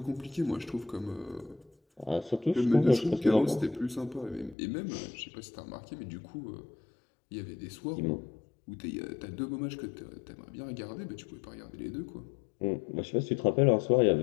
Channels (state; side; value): drops out; right; at 4.5 s